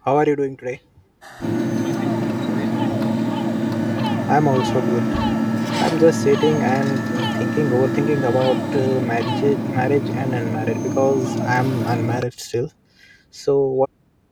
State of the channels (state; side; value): identical; both; correlation 1.00